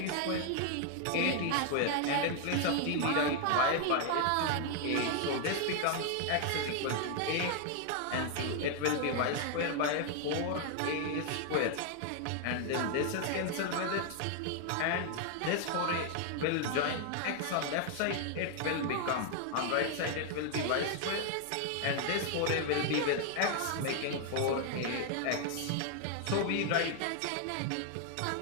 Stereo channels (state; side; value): different; both; correlation 0.00